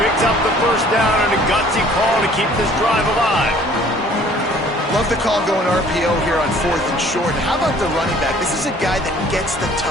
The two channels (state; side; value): normal; both; correlation 0.54